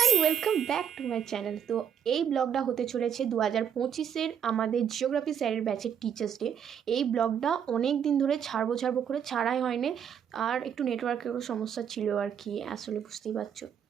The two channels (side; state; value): left; quieter; 8.4 dB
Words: welcome back to my channel. তো এই ব্লগটা হতে চলেছে 2025-এর আমাদের জিওগ্রাফি স্যারের ব্যাচের টিচার্স ডে। এই ব্লগটা অনেক দিন ধরে ছাড়বো করে ছাড়াই হয়নি, আর একটু নেটওয়ার্কেরও সমস্যা ছিল আর কি, আসলে বুঝতেই পারছো।